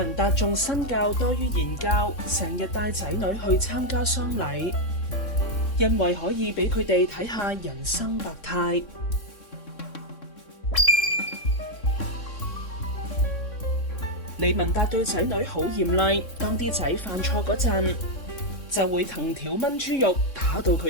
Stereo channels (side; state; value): right; late; 3.6 ms